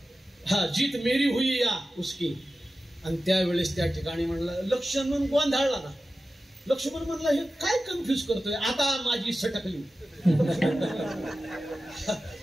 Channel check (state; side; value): normal; both; correlation 0.94